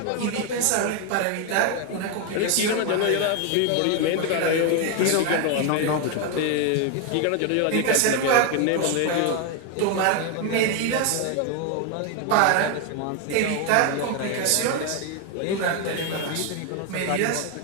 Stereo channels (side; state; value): both; different; correlation 0.01